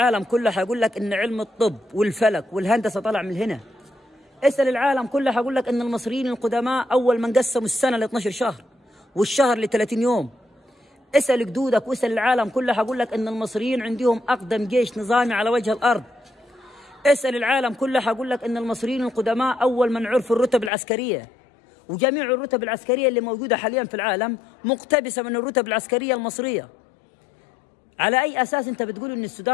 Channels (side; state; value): right; drops out; at 20.7 s